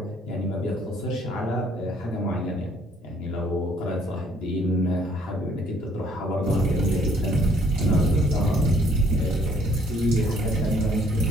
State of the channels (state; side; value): normal; both; correlation 0.62